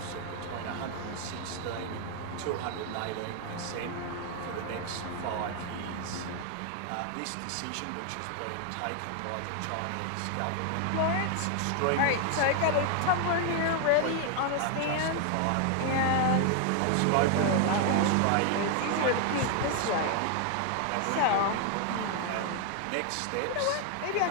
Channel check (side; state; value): both; different; correlation 0.00